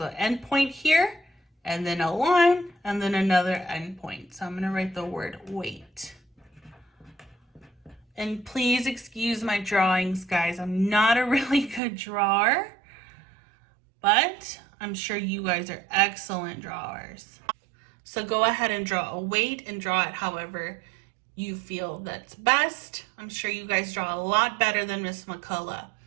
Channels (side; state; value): left; drops out; at 11.8 s